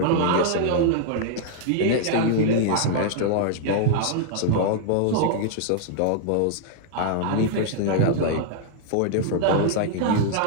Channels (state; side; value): different; both; correlation -0.01